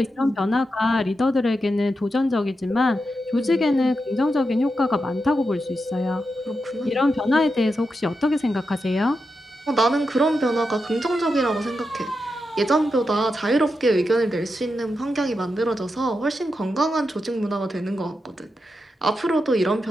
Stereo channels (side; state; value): both; normal; correlation 0.87